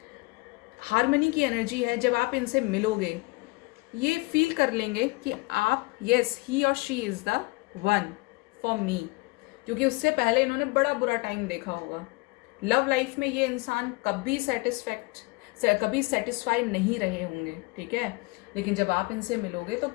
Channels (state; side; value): quieter; right; 25.1 dB